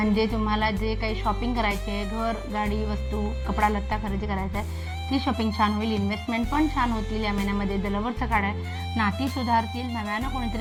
तुम्हाला जे काही शॉपिंग करायचे आहे, घर, गाडी, वस्तू, कपडा लत्ता खरेदी करायचा आहे, ती शॉपिंग छान होईल. इन्व्हेस्टमेंट पण छान होतील या महिन्यामध्ये. द लव्हरचं कार्ड आहे. नाती सुधारतील. नव्यानं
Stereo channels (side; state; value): both; identical; correlation 1.00